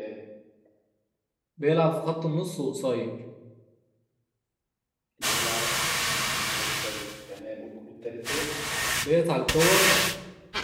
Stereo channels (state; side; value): identical; both; correlation 1.00